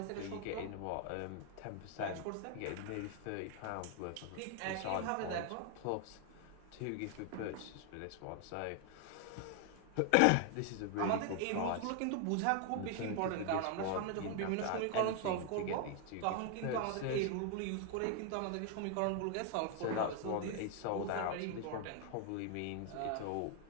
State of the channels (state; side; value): different; both; correlation 0.00